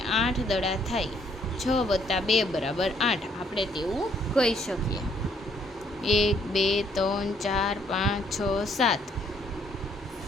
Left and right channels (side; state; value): both; normal; correlation 0.67